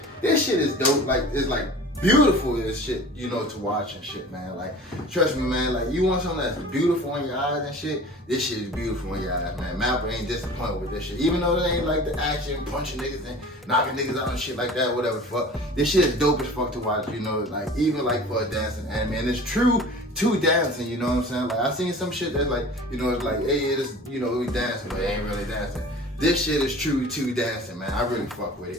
this shit is dope. Like it's like beautiful as shit, you know, to watch and shit, man. Like, trust me, man, like, you want something that's beautiful in your eyes and shit, this shit is beautiful in your eyes, man. Mappa ain't disappointed with this shit. Even though it ain't like the action, punching niggas and knocking niggas out and shit like that, whatever the fuck. This shit is dope as fuck to watch, you know, like, even like for a dancing anime. And it's true to dancing, you know what I'm saying? Like, I've seen some shit that's like, you know, it's like, hey, it is, you know, we dancing, but it ain't really dancing. This shit is true to dancing, man. I really fuck with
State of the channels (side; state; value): both; normal; correlation 0.42